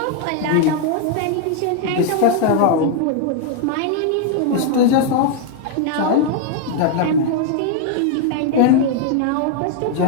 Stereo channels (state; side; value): different; both; correlation 0.00